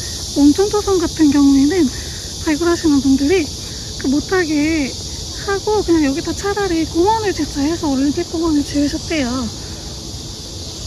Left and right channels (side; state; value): both; identical; correlation 1.00